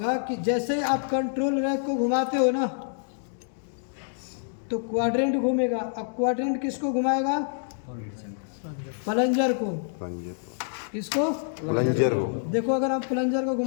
कि जैसे ही आप कंट्रोल रैक को घुमाते हो ना तो क्वाड्रेंट घूमेगा। अब क्वाड्रेंट किसको घुमाएगा? प्लंजर को। प्लंजर। किसको? प्लंजर हो। देखो अगर आप प्लंजर को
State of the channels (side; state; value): right; silent; digital silence